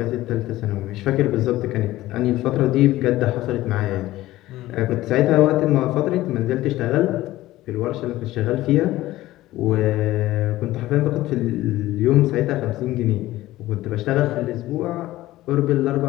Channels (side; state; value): right; quieter; 16.3 dB